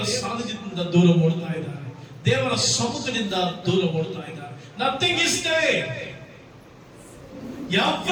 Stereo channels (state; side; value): identical; both; correlation 1.00